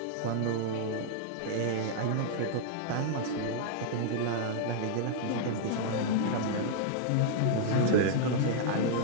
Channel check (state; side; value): different; both; correlation -0.01